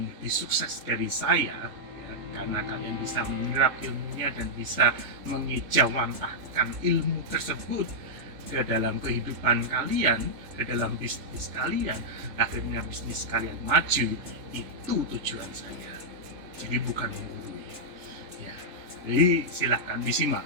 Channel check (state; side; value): late; left; 3.4 ms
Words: lebih sukses dari saya ya, karena kalian bisa menyerap ilmunya dan bisa mengejawantahkan ilmu tersebut ke dalam kehidupan kalian, ke dalam bisnis kalian, akhirnya bisnis kalian maju. Itu tujuan saya. Jadi bukan menggurui. Ya, jadi silahkan disimak.